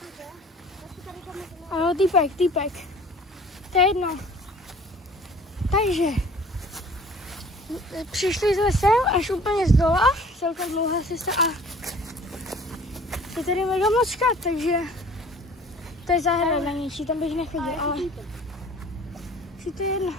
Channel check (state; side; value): normal; both; correlation 0.49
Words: Jo, týpek. To je jedno. Takže přišli jsme sem až úplně z dola, celkem dlouhá cesta a je tady mega moc chat, takže to je zahrada něčí, tam bych nechodil, ale si to je jedno.